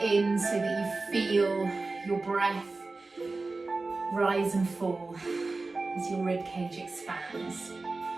in so that you feel your breath rise and fall as your ribcage expands.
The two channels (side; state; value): left; quieter; 3.6 dB